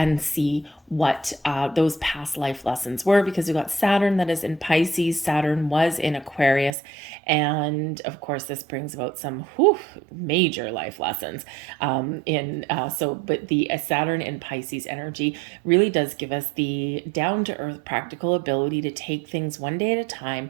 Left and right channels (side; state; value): left; drops out; at 6.7 s